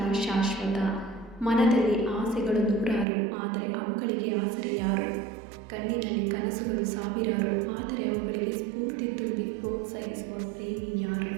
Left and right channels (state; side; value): drops out; left; at 3.1 s